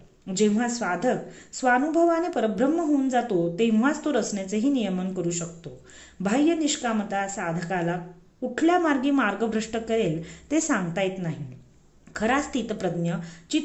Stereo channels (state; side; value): identical; both; correlation 1.00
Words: जेव्हा साधक स्वानुभवाने परब्रह्म होऊन जातो तेव्हाच तो रचनेचेही नियमन करू शकतो. बाह्य निष्कामता साधकाला कुठल्या मार्गी मार्गभ्रष्ट करेल ते सांगता येत नाही. खरा स्थितप्रज्ञ